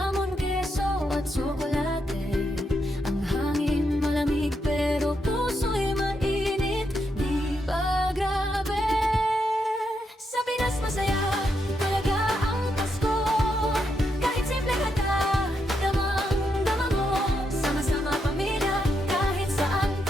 keso at tsokolate. Ang hangin malamig pero puso'y mainit. Di ba grabe? Sa Pinas masaya talaga ang Pasko. Kahit simple handa, damang-dama mo. Sama-sama pamilya, kahit saan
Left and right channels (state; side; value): normal; both; correlation 0.81